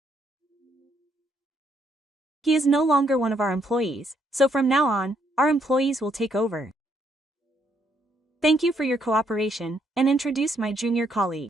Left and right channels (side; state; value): both; normal; correlation 0.72